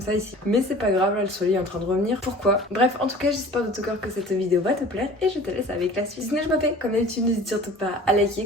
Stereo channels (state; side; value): normal; both; correlation 0.44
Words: ça ici. Mais c'est pas grave, là le soleil est en train de revenir. Pourquoi? Bref, en tout cas j'espère de tout cœur que cette vidéo va te plaire et je te laisse avec la suite. Sinon je m'appelle, comme d'habitude n'hésite surtout pas à liker,